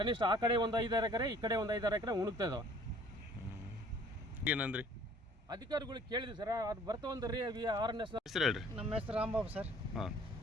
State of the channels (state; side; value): normal; both; correlation 0.54